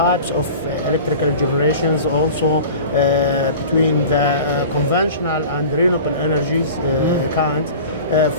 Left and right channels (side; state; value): both; inverted; correlation -0.39